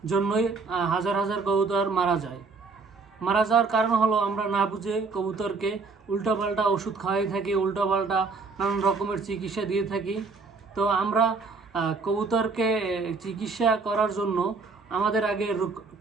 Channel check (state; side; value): quieter; left; 4.3 dB